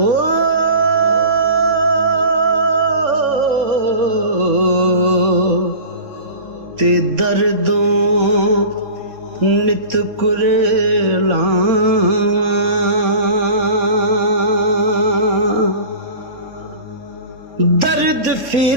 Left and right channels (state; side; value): late; left; 3.6 ms